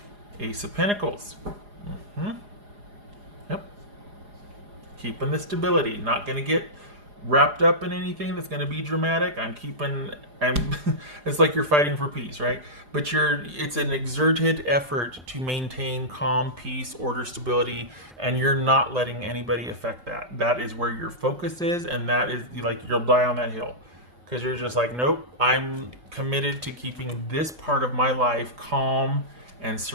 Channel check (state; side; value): late; left; 4.9 ms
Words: Ace of Pentacles. Yep. Keeping the stability. Not going to get wrapped up in anything that's going to be dramatic. It's like you're fighting for peace, right? But it's an exerted effort to maintain calm, peace, order, stability, and you're not letting anybody affect that. That is where your focus is, and that is like you'll die on that hill because you're just like, nope, I'm committed to keeping this part of my life calm and